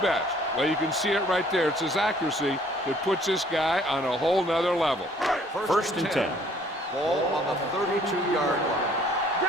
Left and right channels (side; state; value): both; normal; correlation 0.59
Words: best? Well, you can see it right there. It's his accuracy that puts this guy on a whole nother level. First and 10. Ball on the 32-yard line.